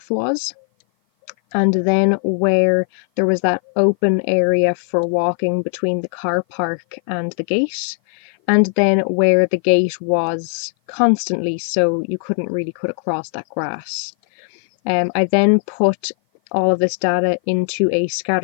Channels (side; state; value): right; silent; 56 dB below the other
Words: was, and then where there was that open area for walking between the car park and the gate, and then where the gate was constantly, so you couldn't really cut across that grass. I then put all of this data into a